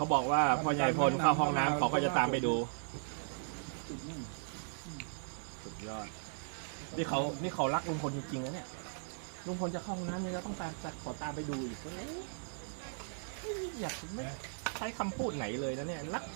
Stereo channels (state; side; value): silent; left; digital silence